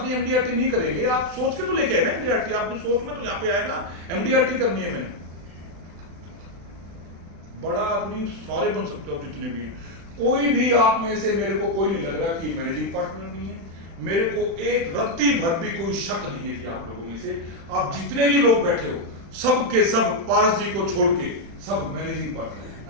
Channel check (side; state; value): left; late; 36 ms